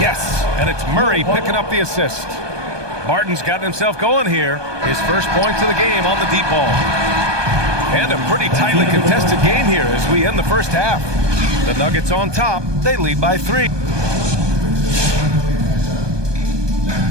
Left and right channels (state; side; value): late; left; 1.2 ms